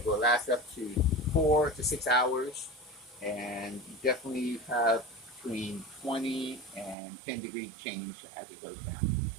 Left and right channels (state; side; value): drops out; left; at 7.0 s